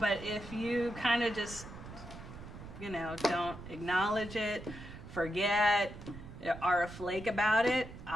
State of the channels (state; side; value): noise; right; rumble, 13 dB below the sound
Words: if you kind of just, don't acknowledge it, forget, are a flake about it,